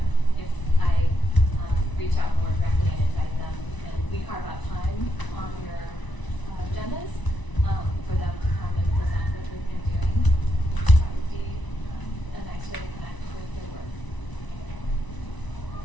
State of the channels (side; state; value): right; late; 1.0 ms